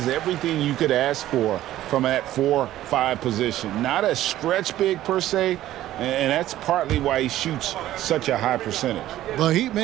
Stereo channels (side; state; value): left; quieter; 13.9 dB